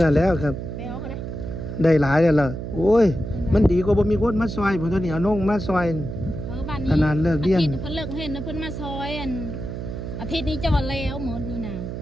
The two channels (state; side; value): noise; right; hum, 7 dB below the sound